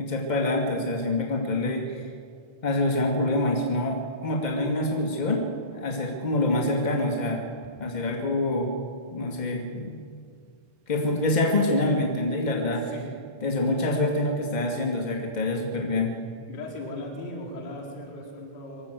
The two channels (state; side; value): late; right; 2.1 ms